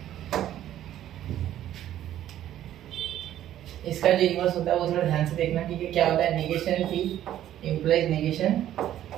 इसका जो इन्वर्स होता है वो थोड़ा ध्यान से देखना, ठीक है। क्या होता है, negation P implies negation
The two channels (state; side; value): quieter; left; 12.1 dB